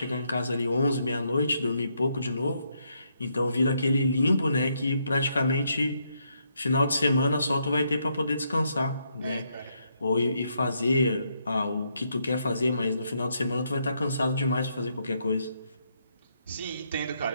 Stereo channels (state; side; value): inverted; both; correlation -0.76